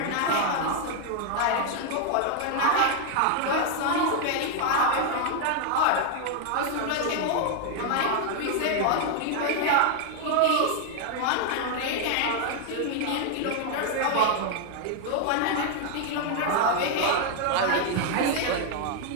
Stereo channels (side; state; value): both; different; correlation 0.00